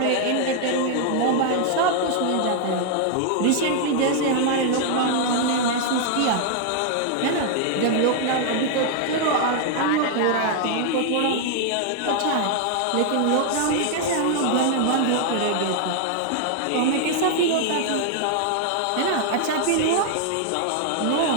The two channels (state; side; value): different; both; correlation 0.00